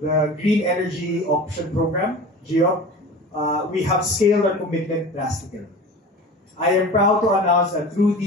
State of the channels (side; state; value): both; normal; correlation 0.36